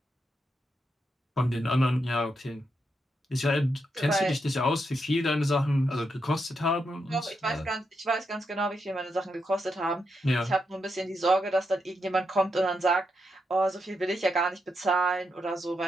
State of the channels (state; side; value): normal; both; correlation 0.83